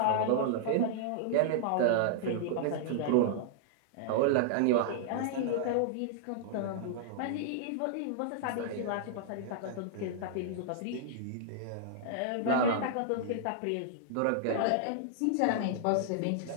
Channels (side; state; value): both; different; correlation -0.01